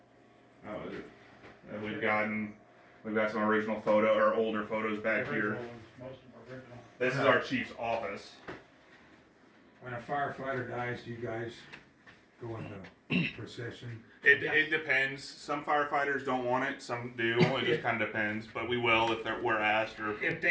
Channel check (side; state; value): both; identical; correlation 1.00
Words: We've got some original older photos back here. Most of them original. This is our chief's office. When a firefighter dies, do you guys go into procession? It depends. Some firefighters don't want it. Some do. It just kind of depends. But we will if we're asked. Or If